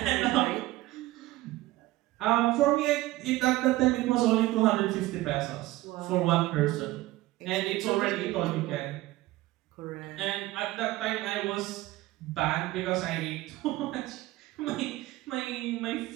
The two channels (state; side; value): quieter; left; 17.8 dB